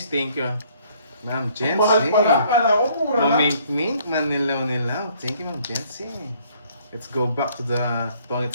thank you. Ma'am Jency. Mahal pala, pala ko, mura lang. Mamink-mink, manilaw-nilaw. Thank you, Ma'am Jency. Let's go back to the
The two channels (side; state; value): both; inverted; correlation -0.62